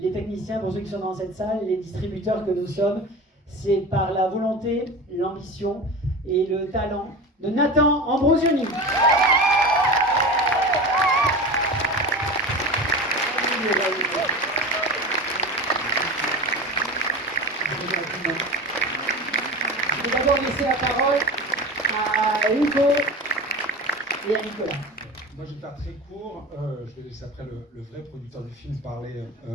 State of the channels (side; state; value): both; normal; correlation 0.30